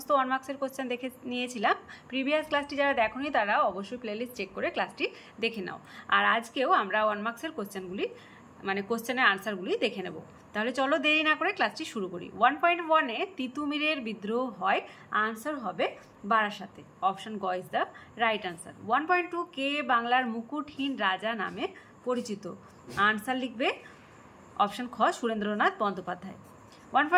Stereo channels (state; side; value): identical; both; correlation 1.00